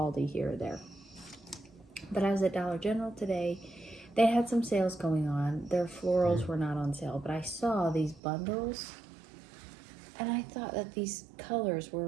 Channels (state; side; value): drops out; left; at 8.2 s